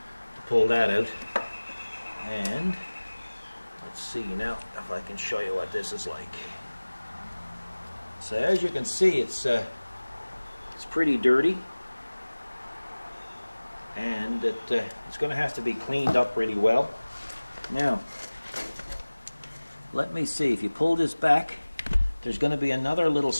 to pull that out. And let's see now if I can show you what this is like. So as you can see, it's pretty dirty. and it's going to have to be cleaned up really well. Now, let me see, if you pull this back, there's going to be another little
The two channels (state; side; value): inverted; both; correlation -1.00